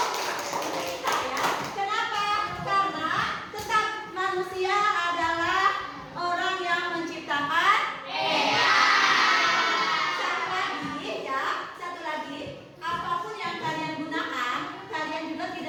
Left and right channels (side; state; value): both; identical; correlation 1.00